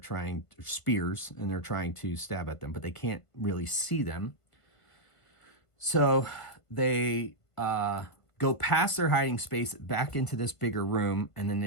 spears, and they're trying to stab at them, but they can't really see them. So they go past their hiding space back into this bigger room, and then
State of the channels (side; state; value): right; late; 1.5 ms